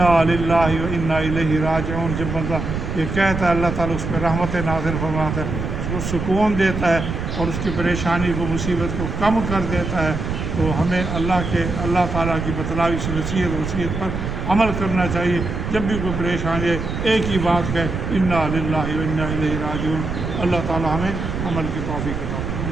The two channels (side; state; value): right; noise; rumble, 4 dB below the sound